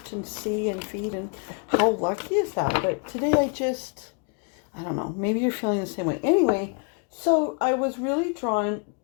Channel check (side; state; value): right; quieter; 36.0 dB